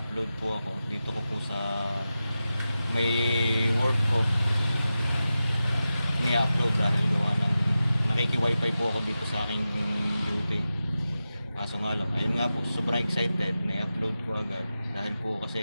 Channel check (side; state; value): both; inverted; correlation -0.93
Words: po ako dito ko po sa may work ko ni-upload dahil gawa ng nakiki-wifi po ako dito sa aking duty. Kaso nga lang, ayun nga po, sobrang excited na i-upload ko agad dahil po